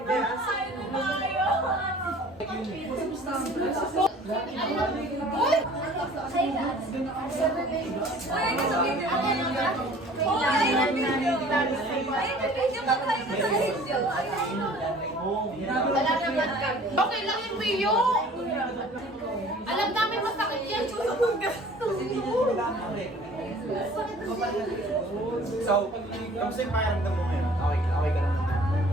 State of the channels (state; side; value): normal; both; correlation 0.49